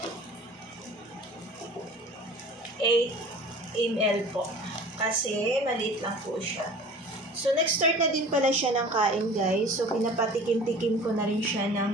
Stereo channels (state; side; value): normal; both; correlation 0.43